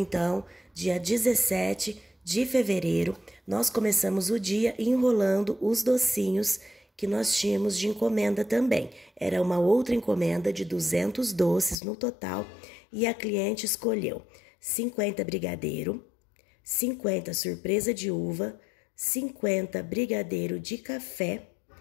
dia 17 de fevereiro, nós começamos o dia enrolando os docinhos que nós tínhamos de encomenda também. Era uma outra encomenda de 200 doces no total e a cliente escolheu 50 brigadeiro, 50 surpresa de uva, 50 brigadeiro de café,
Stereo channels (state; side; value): drops out; right; at 11.8 s